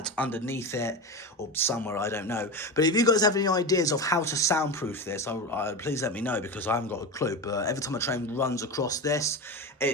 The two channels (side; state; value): both; normal; correlation 0.23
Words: underneath it or somewhere, I don't know. But if you guys have any ideas of how to soundproof this, please let me know, because I haven't got a clue. But every time a train runs across this,